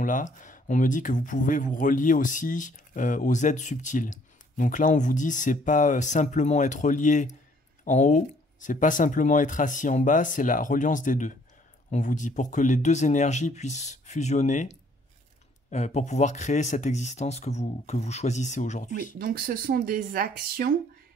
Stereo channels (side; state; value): both; normal; correlation 0.62